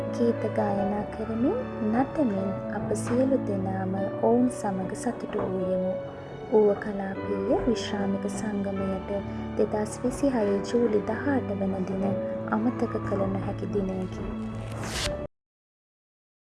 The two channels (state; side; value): identical; both; correlation 1.00